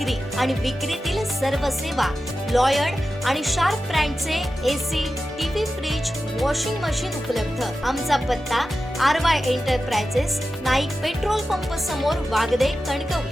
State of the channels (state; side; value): normal; both; correlation 0.92